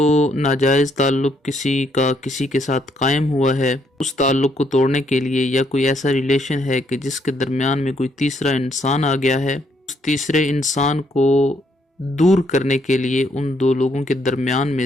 ناجائز تعلق کسی کے ساتھ قائم ہوا ہے، اس تعلق کو توڑنے کے لیے یا کوئی ایسا ریلیشن ہے کہ جس کے درمیان میں کوئی تیسرا انسان آ گیا ہے، اس تیسرے انسان کو دور کرنے کے لیے ان دو لوگوں کے درمیان میں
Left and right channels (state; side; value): normal; both; correlation 0.72